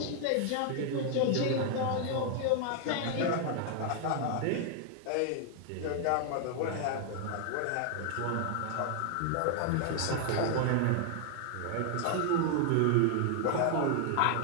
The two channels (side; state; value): both; different; correlation 0.00